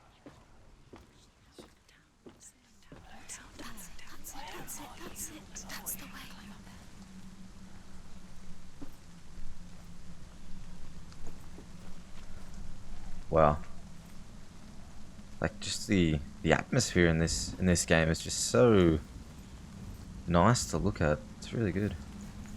That's the way. Wow. Like just the atmosphere in this game is just so nice to look at. It's really good.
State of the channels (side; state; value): both; identical; correlation 1.00